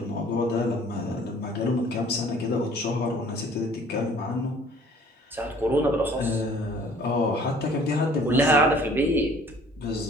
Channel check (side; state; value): both; normal; correlation 0.54